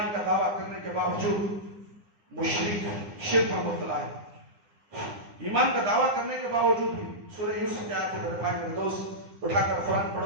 کا دعویٰ کرنے کے باوجود مشرک، شرک میں مبتلا ہے. ایمان کا دعویٰ کرنے کے باوجود بھی سورہ یوسف کی آیت ہے. میرے بھائی، میرے دوست، اٹھا کر قرآن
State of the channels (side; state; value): left; late; 9.8 ms